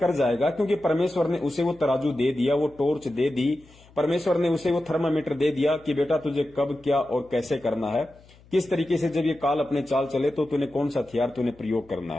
जाएगा, क्योंकि परमेश्वर ने उसे वो तराजू दे दिया, वो टॉर्च दे दी, परमेश्वर ने उसे वो थर्मामीटर दे दिया कि बेटा तुझे कब क्या और कैसे करना है, किस तरीके से जब ये काल अपने चाल चले तो तूने कौन सा हथियार तूने प्रयोग करना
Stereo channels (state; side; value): noise; left; hum, 26 dB below the sound